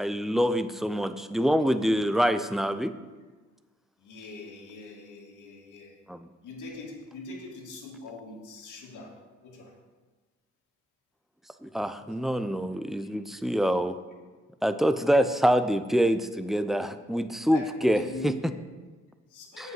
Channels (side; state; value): both; normal; correlation 0.89